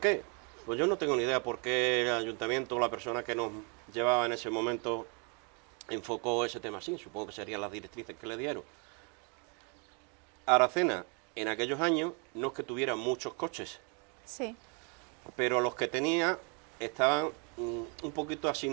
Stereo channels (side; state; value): left; quieter; 36.1 dB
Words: Pues yo no tengo ni idea por qué el ayuntamiento o la persona que nos llevaba en ese momento enfocó ese tema así, supongo que serían las directrices que le dieron. Aracena, en aquellos años, no es que tuviera muchos coches, sí, pero los que tenía estaban un poquito así